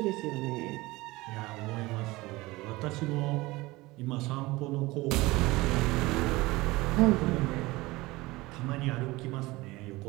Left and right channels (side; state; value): left; quieter; 20.8 dB